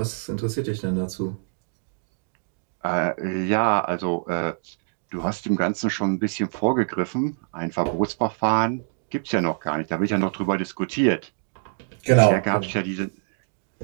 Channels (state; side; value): silent; left; digital silence